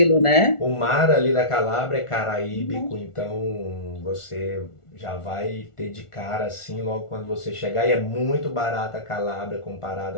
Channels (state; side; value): late; right; 1.4 ms